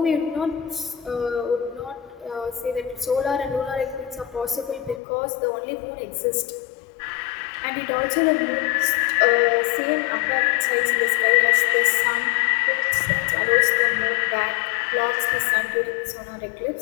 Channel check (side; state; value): right; drops out; at 5.0 s